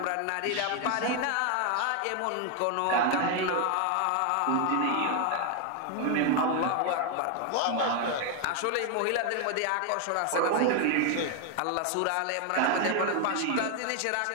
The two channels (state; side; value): different; both; correlation 0.01